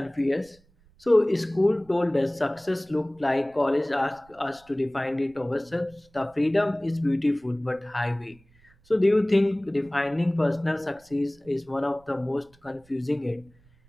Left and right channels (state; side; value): noise; right; rumble, 30 dB below the sound